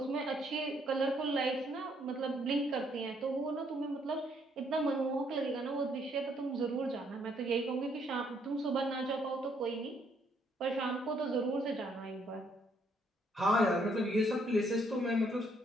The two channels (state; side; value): normal; both; correlation 0.69